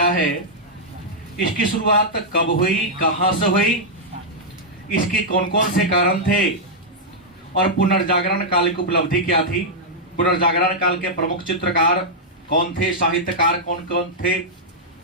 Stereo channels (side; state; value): both; normal; correlation -0.07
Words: है, इसकी शुरुआत कब हुई, कहां से हुई, इसके कौन कौन से कारण थे और पुनर्जागरण काल की उपलब्धि क्या थी। पुनर्जागरण काल के प्रमुख चित्रकार कौन थे, साहित्यकार कौन कौन थे,